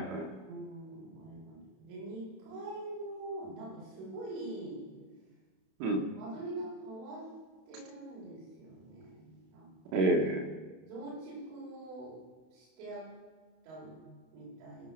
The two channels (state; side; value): late; left; 32 ms